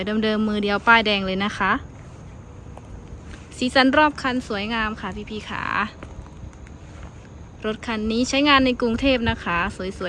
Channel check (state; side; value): identical; both; correlation 1.00